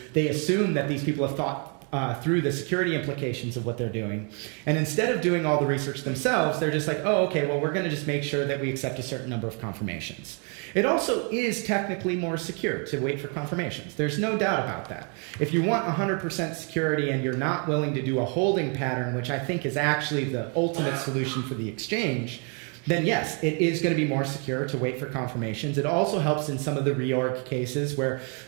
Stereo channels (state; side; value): quieter; left; 37.9 dB